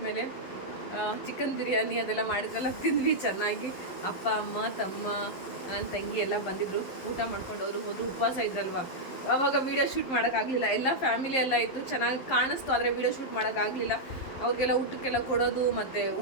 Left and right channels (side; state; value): right; late; 11 ms